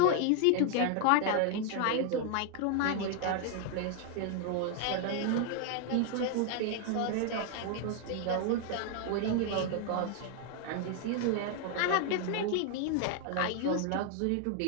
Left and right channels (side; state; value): both; different; correlation 0.00